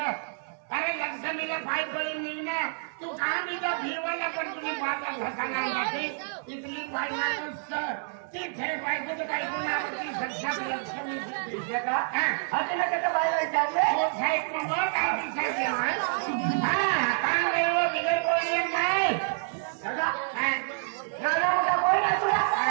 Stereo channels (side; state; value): left; silent; 59 dB below the other